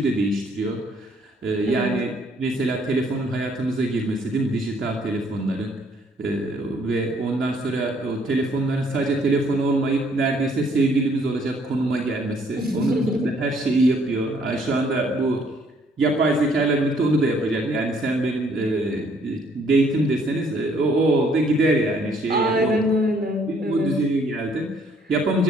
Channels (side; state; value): both; normal; correlation 0.65